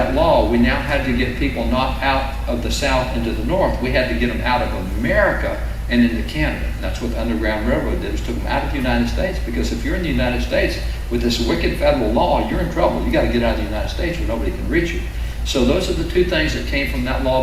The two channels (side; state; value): both; identical; correlation 1.00